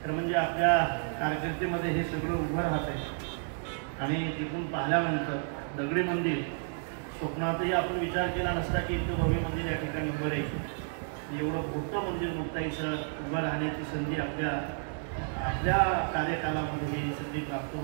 तर म्हणजे आपल्या कारकिर्दीमध्ये हे सगळं उभं राहत आहे. आणि तिथून पाहिल्यानंतर दगडी मंदिर स्वप्नातही आपण विचार केला नसता की इतकं भव्य मंदिर या ठिकाणी उभं राहील. एवढं मोठं मंदिर मुक्ताईचं उभं राहण्याची संधी आपल्या कार्यकालामध्ये ही संधी प्राप्त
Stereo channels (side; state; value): left; silent; 57 dB below the other